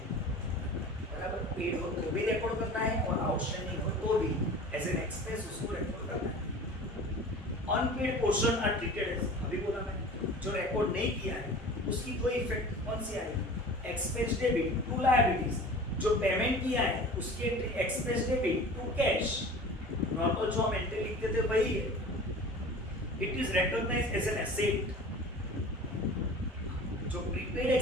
बराबर, पेड हो तो भी रिकॉर्ड करना है और आउटस्टैंडिंग हो तो भी एज एन एक्सपेंस उसको रिकॉर्ड करना है। Unpaid portion are treated as, अभी बोला मैंने, जो रिकॉर्ड नहीं किया है उसकी कोई इफेक्ट कौन सी आएगी, एक्सपेंस डेबिट टू लायबिलिटीज, जो पेमेंट किया है उसके expense debit to cash, normal जो हम एंट्री लिखते थे वही है। It is recognised as an asset, जो प्रीपेड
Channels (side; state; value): both; normal; correlation 0.39